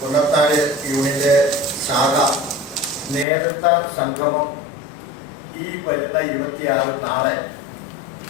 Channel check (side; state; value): right; drops out; at 3.2 s